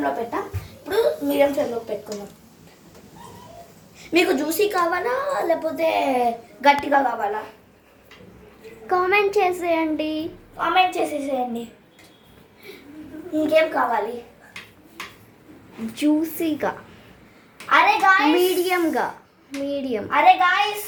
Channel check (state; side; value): identical; both; correlation 1.00